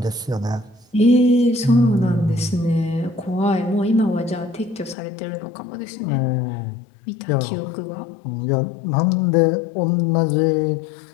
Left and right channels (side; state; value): right; drops out; at 5.0 s